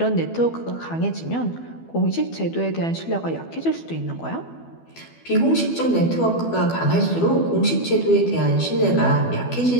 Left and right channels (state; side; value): late; right; 12 ms